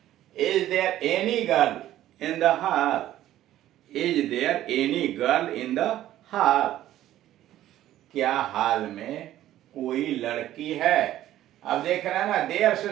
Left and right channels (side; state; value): left; quieter; 13.3 dB